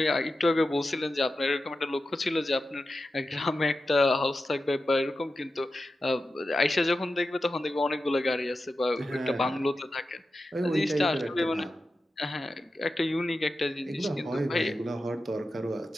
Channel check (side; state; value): both; normal; correlation 0.91